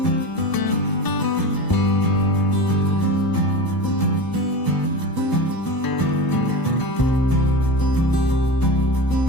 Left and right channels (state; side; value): late; right; 1.0 ms